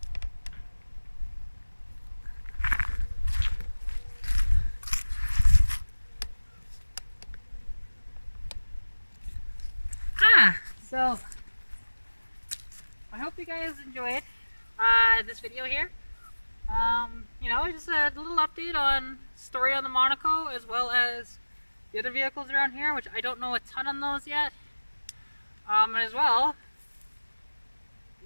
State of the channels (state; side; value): inverted; both; correlation -1.00